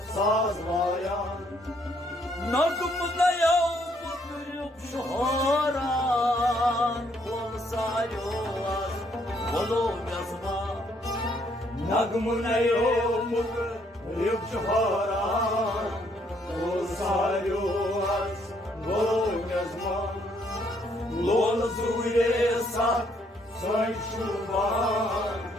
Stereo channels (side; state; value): both; normal; correlation 0.69